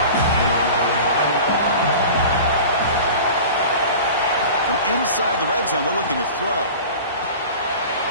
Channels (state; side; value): inverted; both; correlation -0.37